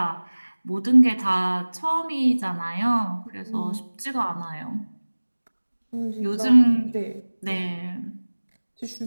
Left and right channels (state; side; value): inverted; both; correlation -1.00